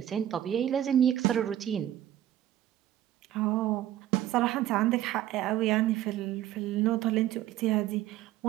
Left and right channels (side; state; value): left; quieter; 12.6 dB